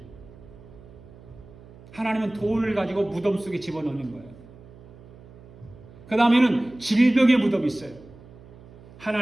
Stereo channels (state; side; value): noise; right; hum, 21 dB below the sound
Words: 하나님은 돈을 가지고 무덤 속에 집어넣는 거예요. 그 다음에는 질병의 무덤이 있어요.